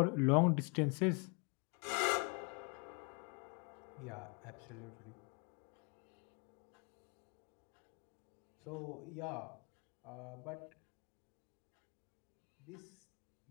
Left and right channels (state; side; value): quieter; right; 34.7 dB